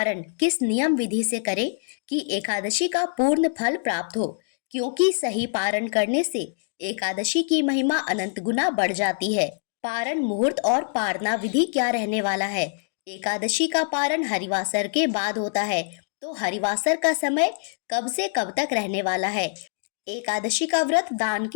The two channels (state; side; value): silent; right; digital silence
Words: किस नियम विधि से करें कि एकादशी का पूर्ण फल प्राप्त हो, क्योंकि सही पारण करने से एकादशी की महिमा अनंत गुना बढ़ जाती है। पारण मुहूर्त और पारना विधि क्या रहने वाला है। एकादशी का पारण हरिवासर के बाद होता है, तो हरिवासर का समय कब से कब तक रहने वाला है। एकादशी का व्रत दान